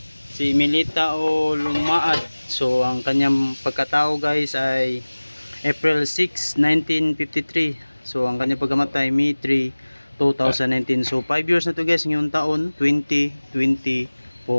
Si Milita o Lumaad. So, ang kanyang pagkatao guys ay April 6, 1953. So, ang kanyang pagkamatay May 3, 2019. So, 5 years na to guys ngayong taon,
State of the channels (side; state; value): both; inverted; correlation -1.00